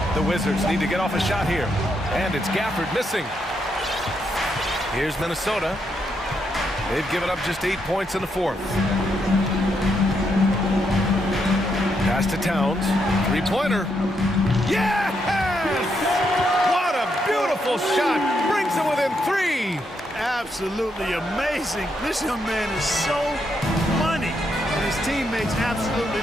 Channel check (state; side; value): normal; both; correlation 0.79